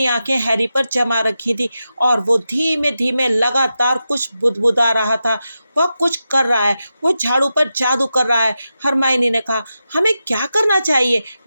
आंखें हैरी पर जमा रखी थी और वो धीमे धीमे लगातार कुछ बुदबुदा रहा था। वह कुछ कर रहा है, वो झाड़ू पर जादू कर रहा है। हरमाइनी ने कहा, हमें क्या करना चाहिए?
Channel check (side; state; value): both; inverted; correlation -0.90